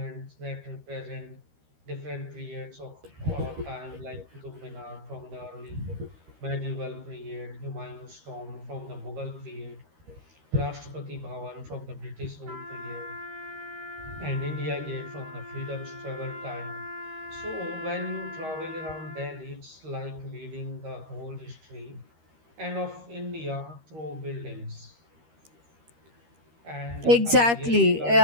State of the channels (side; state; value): left; late; 13 ms